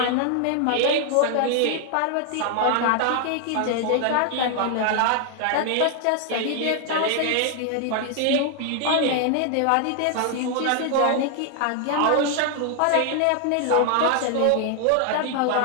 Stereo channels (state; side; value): different; both; correlation 0.00